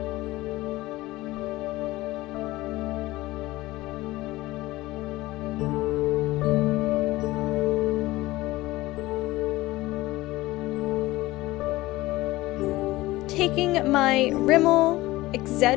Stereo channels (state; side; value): quieter; right; 18.7 dB